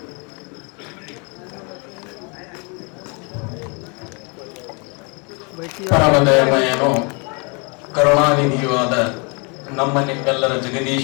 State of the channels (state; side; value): quieter; right; 32.7 dB